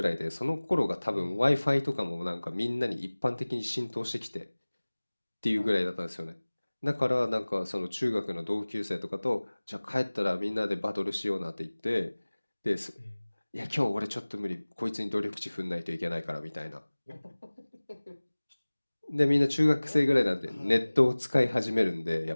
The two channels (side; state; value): both; inverted; correlation -1.00